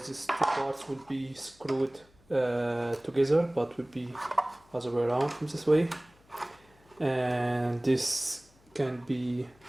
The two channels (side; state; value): left; noise; hum, 30 dB below the sound